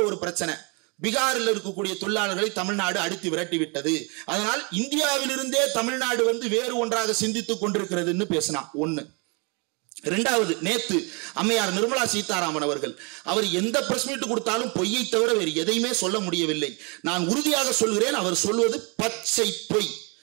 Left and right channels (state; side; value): quieter; left; 32.4 dB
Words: ஒரு பிரச்சனை, பீகாரில் இருக்கக்கூடிய தொழிலாளர்களை தமிழ்நாடு அடித்து விரட்டி விட்டது, அதனால் இந்தியாவிலிருந்தே தமிழ்நாடு வேறு ஒன்றாக சிந்தித்துக் கொண்டிருக்கிறதுன்னு பேசினான். ஒண்ணு. இரண்டாவது, நேத்து அம்மையார் நிர்மலா சீதாராமன் அவர் எந்த பிரஸ் மீட் கொடுத்தாலும் பொய்யை தவிர வேறு எதையுமே சொல்ல முடியவில்லை. நான் உறுதியாக சொல்கிறேன், அவர் சொல்வது பச்சை பொய்.